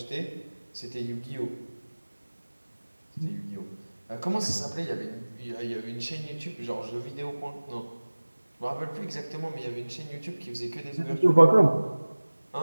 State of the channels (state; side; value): inverted; both; correlation -1.00